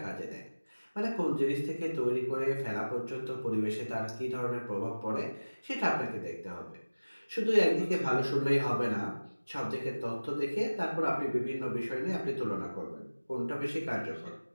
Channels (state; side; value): inverted; both; correlation -1.00